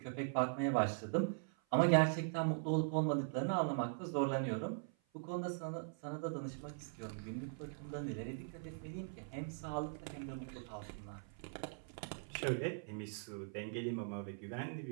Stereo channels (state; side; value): silent; left; 50 dB below the other